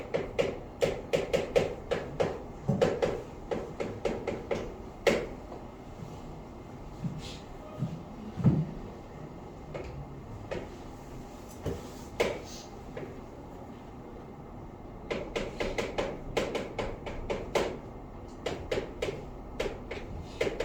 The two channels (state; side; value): identical; both; correlation 1.00